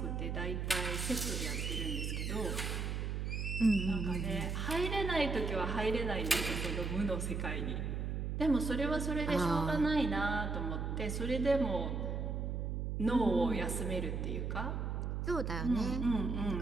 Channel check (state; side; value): noise; right; hum, 2 dB below the sound